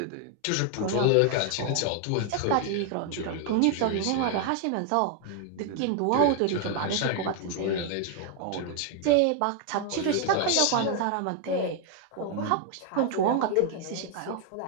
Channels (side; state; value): both; different; correlation 0.00